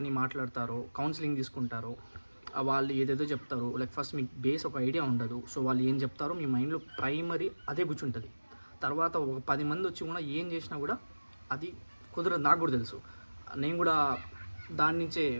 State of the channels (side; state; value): both; inverted; correlation -1.00